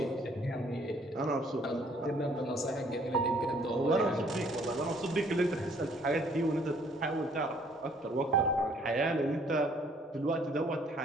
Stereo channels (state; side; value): normal; both; correlation 0.61